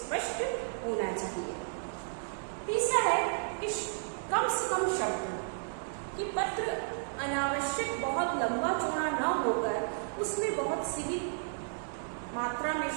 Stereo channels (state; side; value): silent; left; digital silence